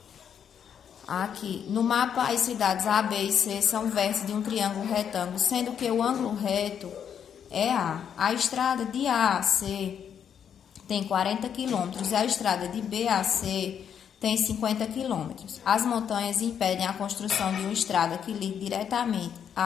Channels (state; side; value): quieter; right; 8.3 dB